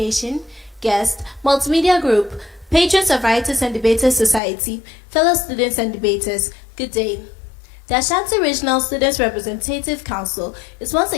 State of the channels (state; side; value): drops out; right; at 4.4 s